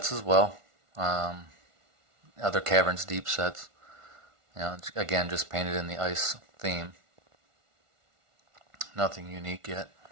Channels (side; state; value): left; late; 1.4 ms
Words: as well, other Caverns Deep sets. Again, just painted in the ice theme. Nothing unique yet.